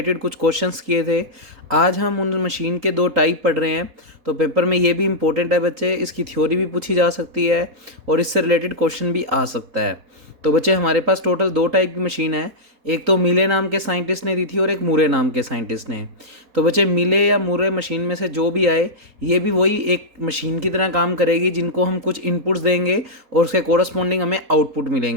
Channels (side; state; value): left; late; 3.8 ms